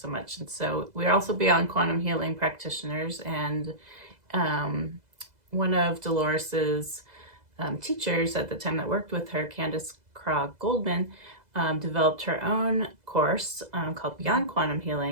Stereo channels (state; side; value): late; left; 2.0 ms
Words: much. And so we're also Beyond Quantum Healing practitioners, and one of Dolores's teachers at the time that worked with her, Candace Krog Goldman, developed her own course called Beyond Quantum